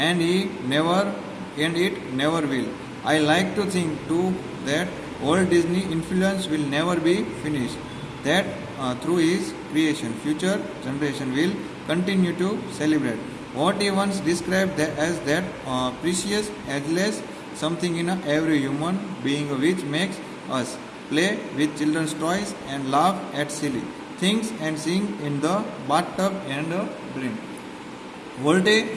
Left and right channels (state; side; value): identical; both; correlation 1.00